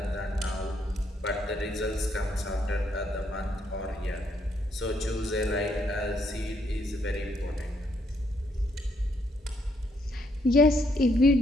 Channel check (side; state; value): both; normal; correlation 0.73